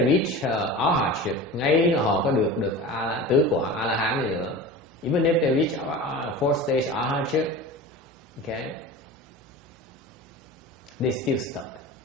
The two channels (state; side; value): normal; both; correlation 0.33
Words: reach arhatship, ngay là họ có được tứ quả A La Hán gì nữa. Even if they reach fourth stage arhatship, okay, they still stuck.